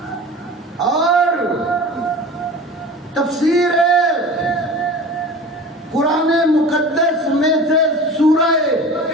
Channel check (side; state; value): both; normal; correlation 0.37